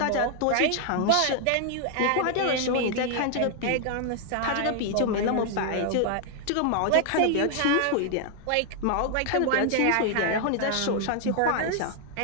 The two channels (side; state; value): both; different; correlation 0.00